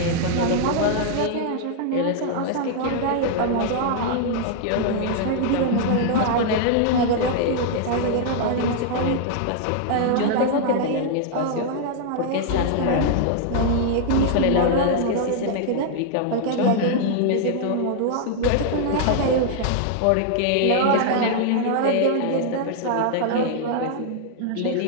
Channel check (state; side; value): different; both; correlation -0.01